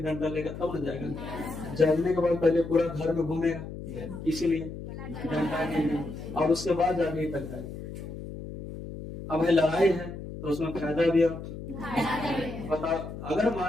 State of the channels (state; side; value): noise; left; hum, 10 dB below the sound